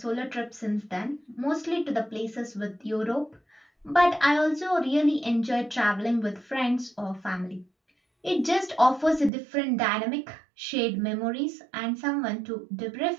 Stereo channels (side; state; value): left; drops out; at 9.3 s